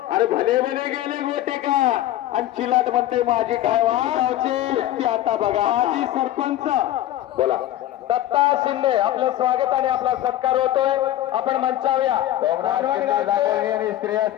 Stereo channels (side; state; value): right; quieter; 13.6 dB